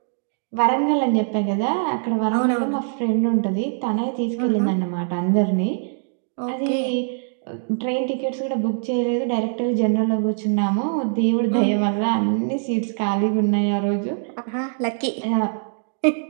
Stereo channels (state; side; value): silent; left; 64 dB below the other